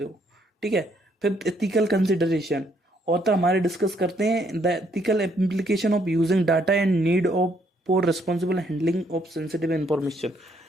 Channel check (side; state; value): both; normal; correlation 0.70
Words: हो, ठीक है। फिर एथिकल कंसिडरेशन, ऑथर हमारे डिस्कस करते हैं the ethical implication of using data and need of for responsible handling of sensitive information,